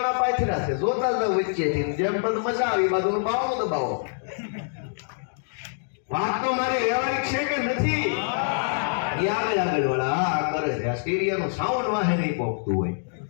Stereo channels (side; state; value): right; silent; digital silence